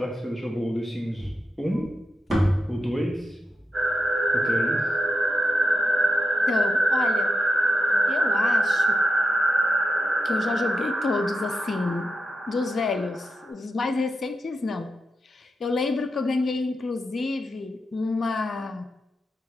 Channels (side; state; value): both; normal; correlation 0.87